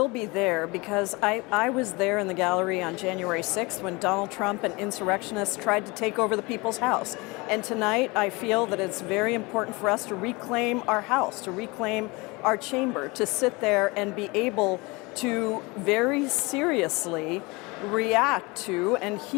be there because I was there in the gallery on January 6th when Donald Trump and insurrectionists tried to take over the People's House. And tonight I feel that it's very important for us to reclaim our house, to reclaim our chamber, to sit there and be able to very seriously react to and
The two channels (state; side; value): quieter; right; 25.3 dB